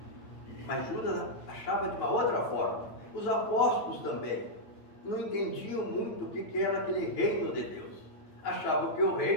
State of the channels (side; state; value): right; late; 9.1 ms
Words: Mas Judas achava de uma outra forma. Os apóstolos também não entendiam muito o que era aquele reino de Deus. Achavam que o